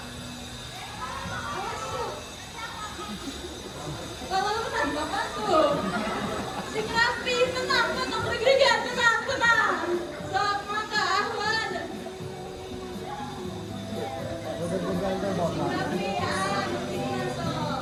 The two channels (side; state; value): both; identical; correlation 1.00